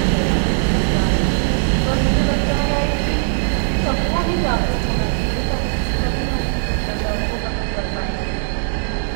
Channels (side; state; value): left; silent; 66 dB below the other